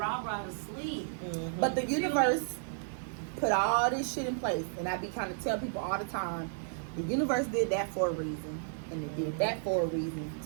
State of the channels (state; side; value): silent; left; digital silence